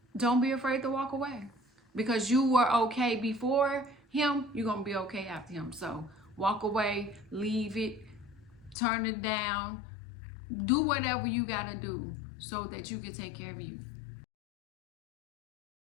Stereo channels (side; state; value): right; drops out; at 8.8 s